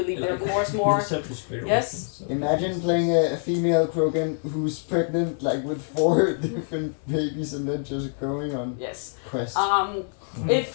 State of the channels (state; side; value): silent; right; 61 dB below the other